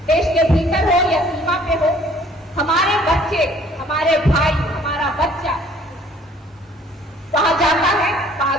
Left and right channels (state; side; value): normal; both; correlation 0.57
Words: देश के भीतर हो या सीमा पे हो, हमारे बच्चे, हमारे भाई, हमारा बच्चा वहां जाता है,